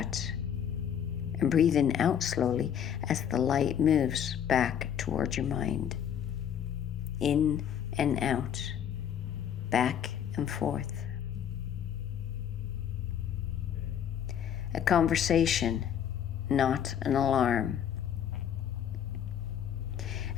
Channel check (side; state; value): right; quieter; 9.0 dB